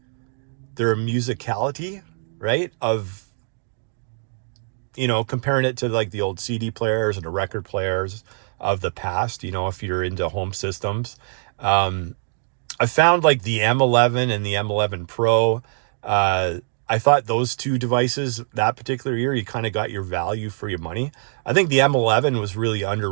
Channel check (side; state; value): left; silent; digital silence